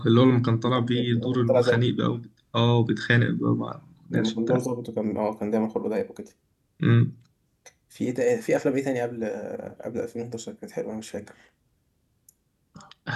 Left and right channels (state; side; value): identical; both; correlation 1.00